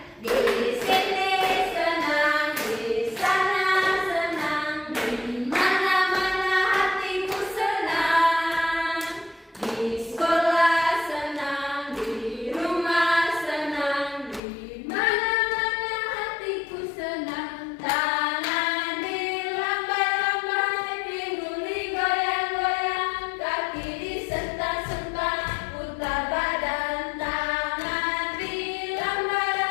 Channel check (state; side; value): drops out; right; at 14.4 s